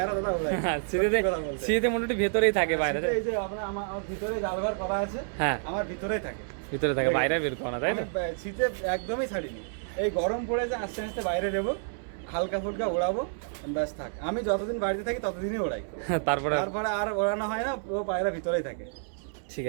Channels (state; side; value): silent; left; digital silence